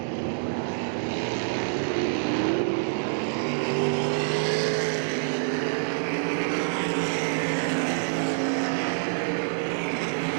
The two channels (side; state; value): left; silent; digital silence